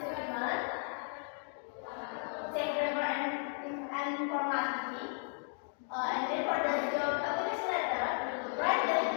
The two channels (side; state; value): right; silent; 54 dB below the other